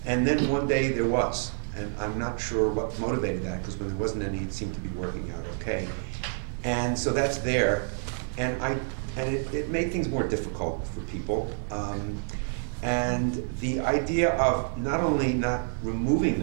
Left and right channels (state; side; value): silent; left; digital silence